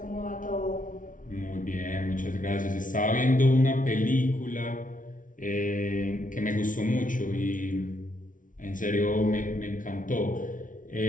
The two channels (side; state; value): right; late; 0.38 ms